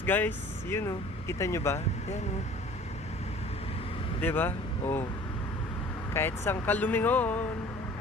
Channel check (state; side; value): normal; both; correlation 0.48